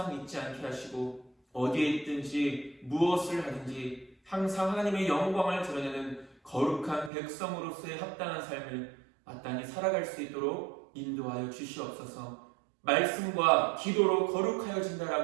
잊지 않게 하시고 어디에 있든지 무엇을 하든지 항상 하나님의 영광을 드러내는 거룩한 백성으로서의 합당한 삶을 마땅히 살아갈 수 있도록 인도하여 주시옵소서. 말씀과 기도로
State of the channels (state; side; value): drops out; left; at 7.1 s